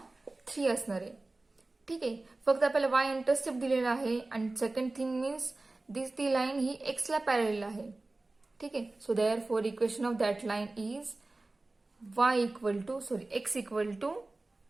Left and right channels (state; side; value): quieter; left; 3.1 dB